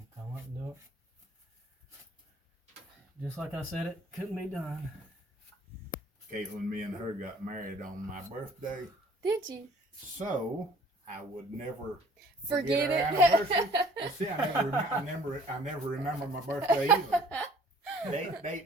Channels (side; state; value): both; normal; correlation 0.54